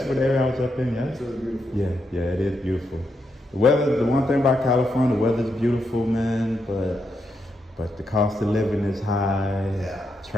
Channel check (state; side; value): normal; both; correlation 0.82